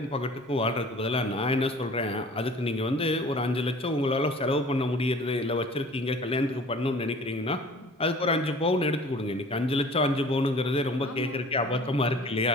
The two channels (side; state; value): both; normal; correlation 0.47